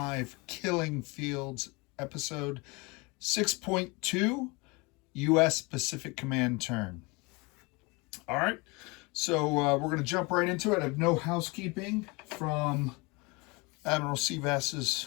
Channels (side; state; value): right; quieter; 27.0 dB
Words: Killing Fields episode 6.2 U.S. Pacific Command turn. All right, so we're going to jump right into it. I have no housekeeping from Admiral